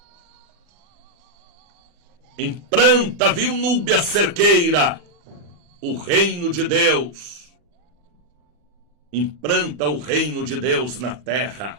Implanta, viu, Núbia Cerqueira, o reino de Deus. Implanta o reino de Deus na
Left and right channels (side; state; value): left; late; 40 ms